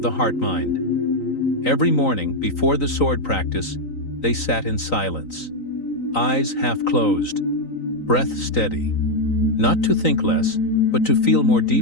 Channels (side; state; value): right; late; 3.9 ms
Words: the heart-mind. Every morning, before the sword practice, they sat in silence, eyes half closed, breath steady. Not to think less, but to feel more